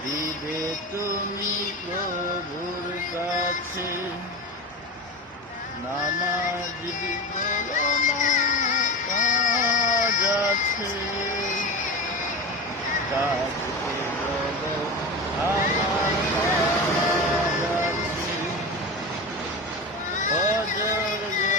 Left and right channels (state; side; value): normal; both; correlation 0.26